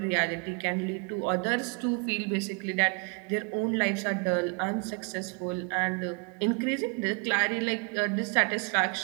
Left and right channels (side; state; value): left; quieter; 33.5 dB